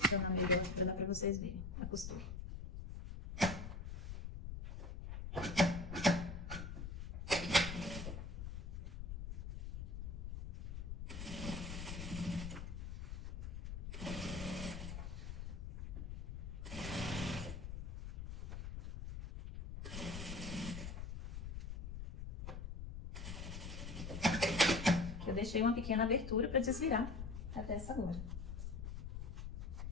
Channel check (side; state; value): left; noise; rumble, 6 dB below the sound